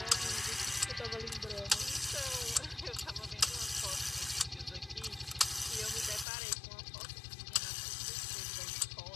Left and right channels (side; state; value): right; drops out; at 6.2 s